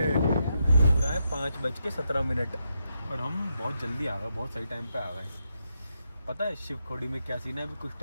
पूरा है 5:17, और हम बहुत जल्दी आ गए, बहुत सही टाइम पे आ गए। पता है शिवखोड़ी में क्या सीन है? अभी कुछ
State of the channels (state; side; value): inverted; both; correlation -0.82